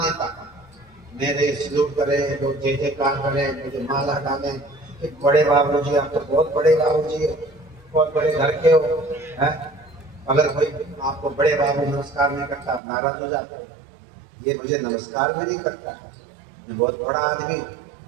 मेरे सलूट करे, लोग जय जयकार करें, मुझे माला डाले कि बड़े बाबूजी, आप तो बहुत बड़े बाबूजी हो, बहुत बड़े घर के हो, हैं? अगर कोई आपको बड़े बाबू नमस्कार नहीं करता, आप नाराज हो जाते हो, ये मुझे नमस्कार भी नहीं करता, मैं बहुत बड़ा आदमी हूँ,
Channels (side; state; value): left; drops out; at 12.8 s